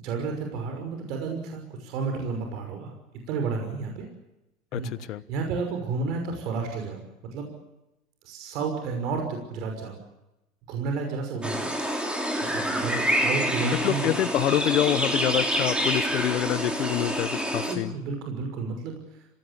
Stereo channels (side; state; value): both; normal; correlation 0.41